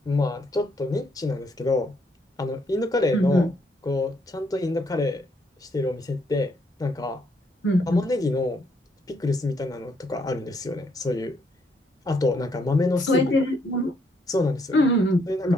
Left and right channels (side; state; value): both; normal; correlation 0.72